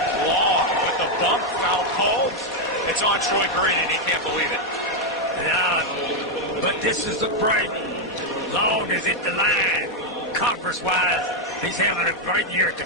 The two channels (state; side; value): normal; both; correlation 0.02